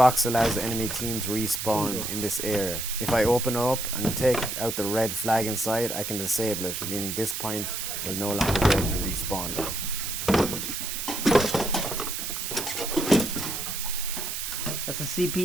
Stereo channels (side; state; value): right; noise; hiss, 4 dB below the sound